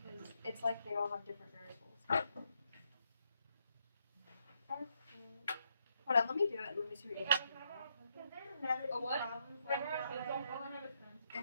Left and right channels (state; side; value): inverted; both; correlation -0.76